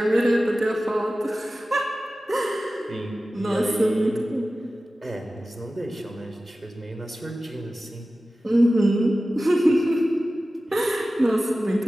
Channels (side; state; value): both; normal; correlation 0.95